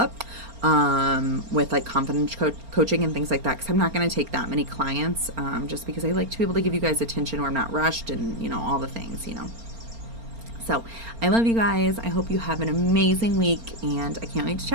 with like confidence coaching and things like that, because I'm not going to take that many clients, just because I like to be able to give you guys attention where I'm not rushed, and all the things. So I love you guys. I hope you have an amazing week, and I can't wait to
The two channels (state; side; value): late; left; 4.3 ms